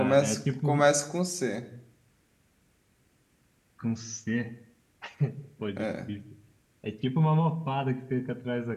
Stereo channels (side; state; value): both; identical; correlation 1.00